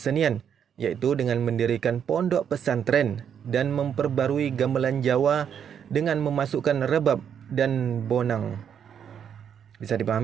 yaitu dengan mendirikan pondok pesantren dan memperbarui gamelan Jawa dengan memasukkan rebab dan bonang. Bisa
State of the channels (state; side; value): quieter; left; 8.2 dB